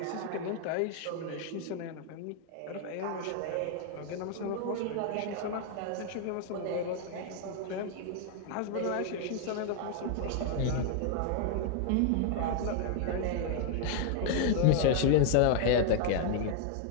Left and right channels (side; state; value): both; different; correlation 0.00